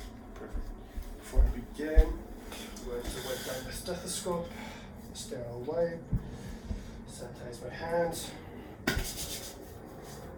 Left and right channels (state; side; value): identical; both; correlation 1.00